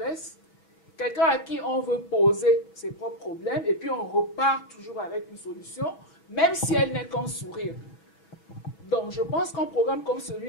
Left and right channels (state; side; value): late; right; 6.0 ms